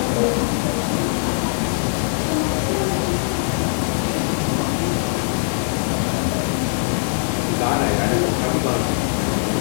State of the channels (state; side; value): silent; right; digital silence